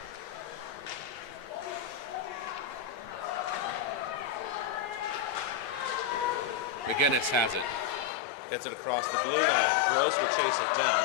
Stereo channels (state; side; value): drops out; right; at 8.1 s